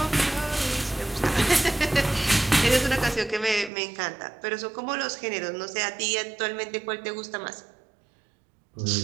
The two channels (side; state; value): left; drops out; at 3.7 s